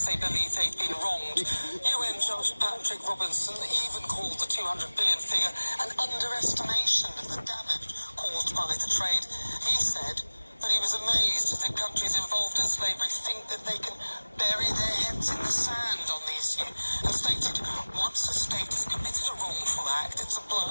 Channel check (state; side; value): inverted; both; correlation -1.00